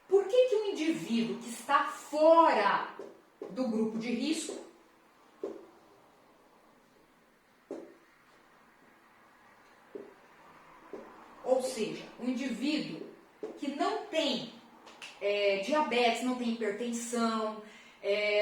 Por que que o indivíduo que está fora do grupo de risco ou seja, o indivíduo que não tem diabetes, não tem hipertensão,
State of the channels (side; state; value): both; identical; correlation 1.00